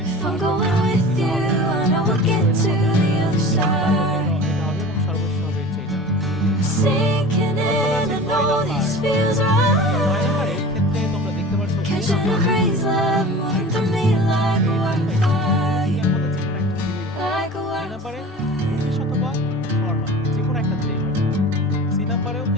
If I'm going with you, I know we'll get to the other side. এটা হবে এবং সর্বশেষ হবে হচ্ছে এটা। Sinking in, I know this feels 9 right. নাম্বারের ক্ষেত্রে তোমরা দেখতে পাচ্ছ Catching a breeze, love moving through me like a wildfire. এর মধ্যে যে কোনো একটা দিলেই হবে। Like a এই নাম্বারে wildfire. ইংলিশ অথবা ফরমাল যে কোনো একটা দিলেই হবে। সি নাম্বারেও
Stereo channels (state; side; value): normal; both; correlation 0.38